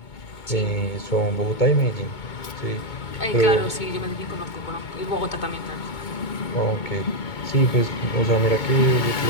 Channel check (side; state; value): right; late; 2.2 ms